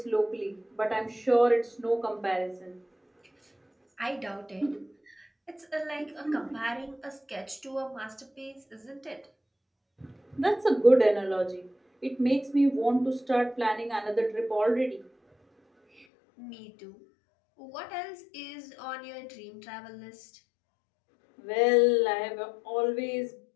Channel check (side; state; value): right; drops out; at 16.1 s